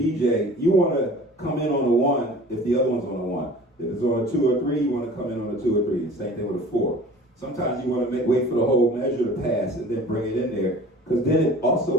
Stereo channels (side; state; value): both; normal; correlation 0.44